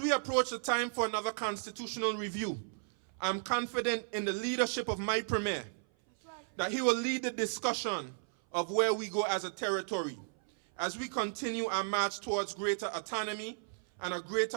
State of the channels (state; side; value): silent; left; 55 dB below the other